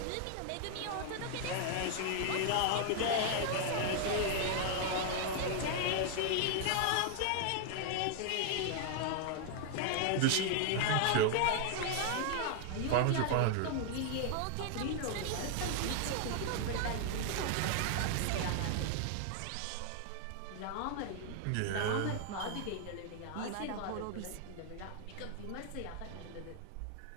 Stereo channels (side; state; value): both; different; correlation 0.00